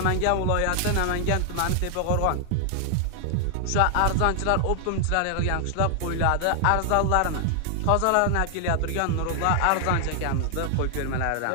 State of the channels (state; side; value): different; both; correlation 0.00